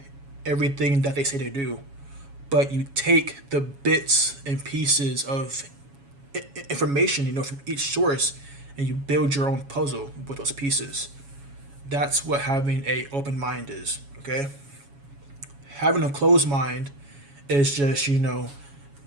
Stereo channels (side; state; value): left; late; 7.2 ms